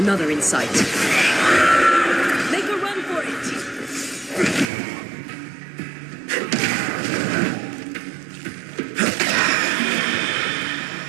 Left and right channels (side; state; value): left; drops out; at 4.7 s